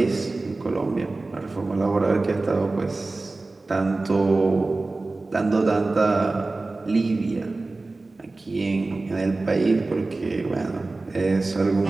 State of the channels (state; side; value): quieter; left; 3.3 dB